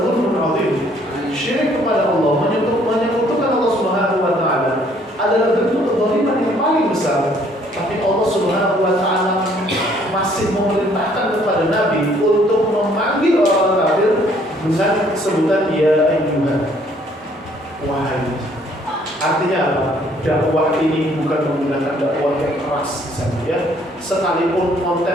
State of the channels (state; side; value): normal; both; correlation 0.62